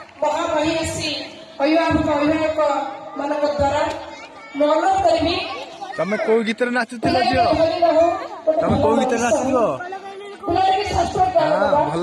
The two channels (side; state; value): both; identical; correlation 1.00